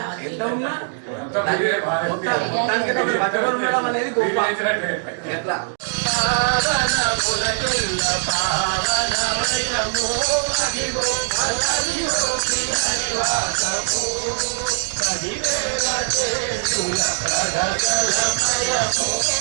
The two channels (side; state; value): left; silent; 65 dB below the other